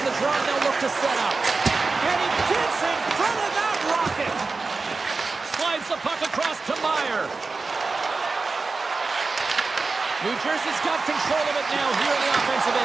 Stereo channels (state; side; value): quieter; left; 4.0 dB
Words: the draw, and they'll look to set up. And he gets in front of that rocket. Slides the puck across to Meyer. New Jersey's got control of it now here on the offensive